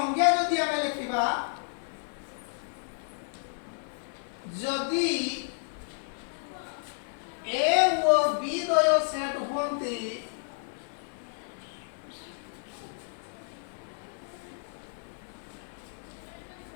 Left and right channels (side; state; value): right; silent; 57 dB below the other